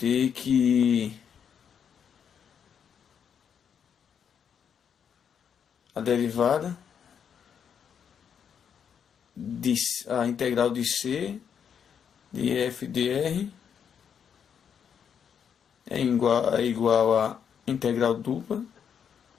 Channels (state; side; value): quieter; right; 7.7 dB